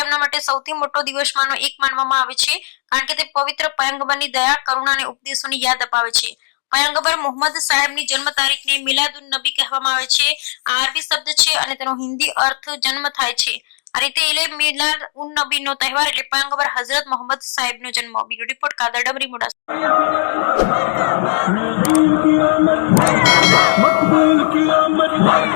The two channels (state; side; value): silent; right; digital silence